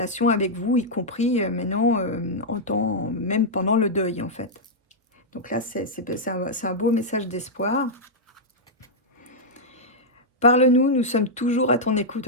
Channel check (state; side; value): normal; both; correlation -0.07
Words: avec vous, y compris maintenant, même pendant le deuil en fait. Donc là, c'est un beau message d'espoir. Parle-nous, nous sommes toujours à ton écoute.